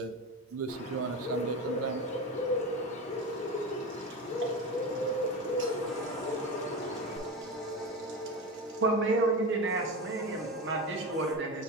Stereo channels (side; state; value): both; normal; correlation 0.23